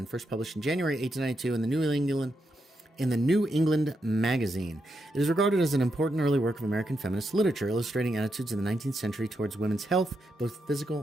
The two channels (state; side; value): normal; both; correlation 0.83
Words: first published in January 1892 in the New England Magazine. It is regarded as an important early work of American feminist literature, illustrating attitudes in the 19th century towards women's health, both